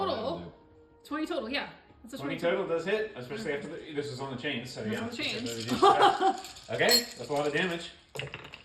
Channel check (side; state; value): both; identical; correlation 1.00